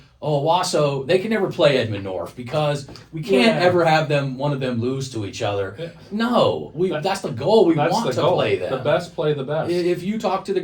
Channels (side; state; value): both; identical; correlation 1.00